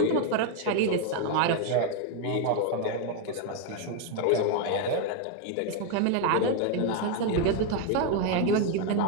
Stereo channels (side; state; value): both; different; correlation 0.01